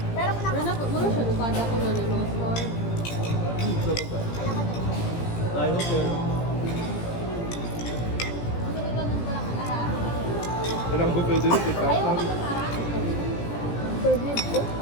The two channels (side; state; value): right; late; 17 ms